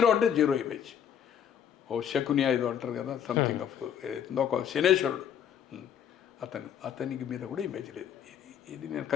అంటే జీరో ఇమేజ్. ఓ శకునియా ఏదో అంటారు కదా, సంథింగ్ ఆఫ్ ఒక శనేశ్వరుడు. అతనికి మీద కూడా ఇమేజ్ లేదు. ఇది నేను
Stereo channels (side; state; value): right; quieter; 8.8 dB